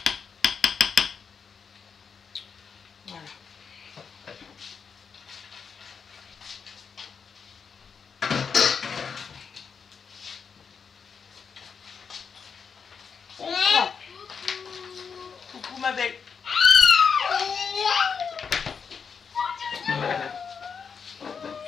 Voilà. On prend. Coucou ma belle.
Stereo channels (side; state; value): right; quieter; 6.1 dB